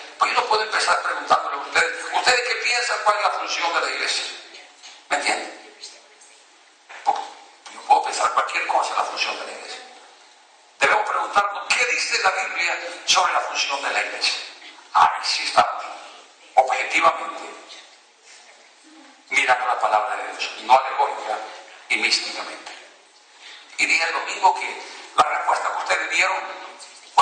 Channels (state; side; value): identical; both; correlation 1.00